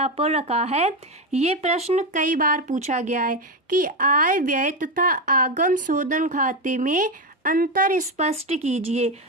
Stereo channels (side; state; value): both; normal; correlation 0.12